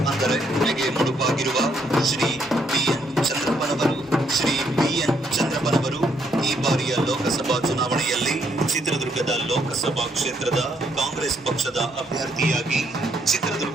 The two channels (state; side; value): normal; both; correlation 0.72